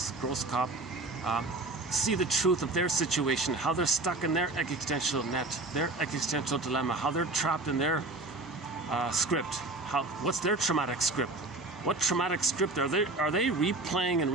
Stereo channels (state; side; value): quieter; left; 3.0 dB